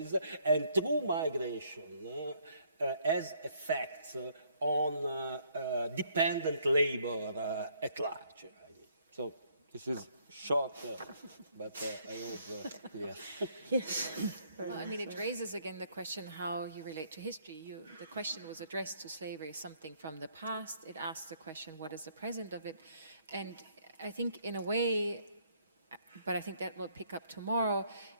and through migration has effects on dependent labor at large. So this is short, but I hope clear. Yes. Well, I mean, it raises again the question how you relate to history. The question was addressed to slavery, something from the past. It asks the question, what is the present of it? And I think in a way, but I think that will pick up tomorrow,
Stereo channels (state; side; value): inverted; both; correlation -0.66